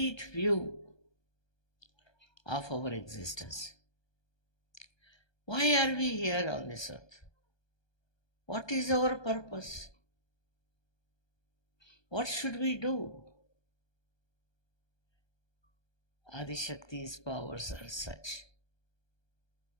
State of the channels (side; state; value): right; late; 1.2 ms